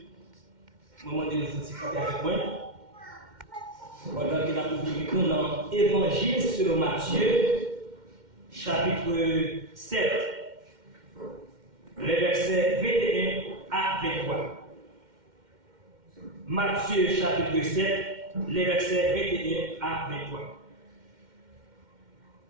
je vais demander de vous avec moi. Pendant que nous avons dans l'Évangile selon Matthieu, chapitre 7, les versets 21 à 23. Matthieu, chapitre 7, les versets 21 à 23.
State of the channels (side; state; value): left; late; 2.1 ms